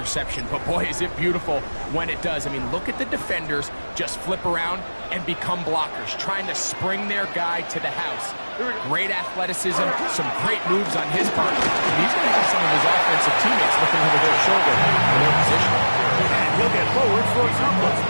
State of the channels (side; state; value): both; inverted; correlation -1.00